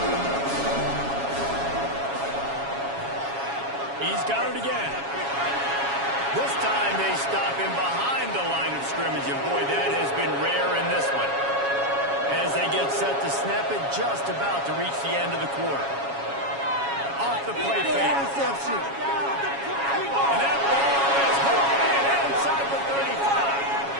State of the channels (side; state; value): left; late; 7.2 ms